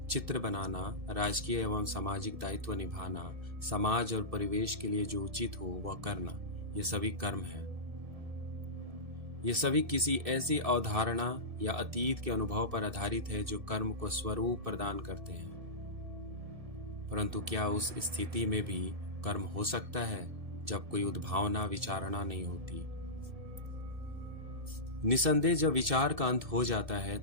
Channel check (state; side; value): late; left; 1.7 ms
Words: चित्र बनाना, राजकीय एवं सामाजिक दायित्व निभाना, समाज और परिवेश के लिए जो उचित हो वह करना, ये सभी कर्म हैं। ये सभी किसी ऐसी अवधारणा या अतीत के अनुभव पर आधारित है जो कर्म को स्वरूप प्रदान करते हैं। परंतु क्या उस स्थिति में भी कर्म हो सकता है जब कोई उद्भावना विचारणा नहीं होती? निसंदेह जब विचार का अंत हो जाता है